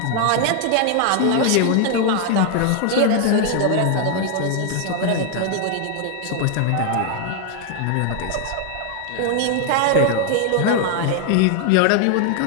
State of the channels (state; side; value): different; both; correlation 0.00